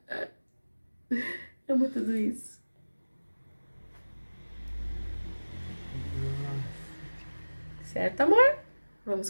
Amo tudo isso. Certo, amor? Vamos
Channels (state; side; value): inverted; both; correlation -1.00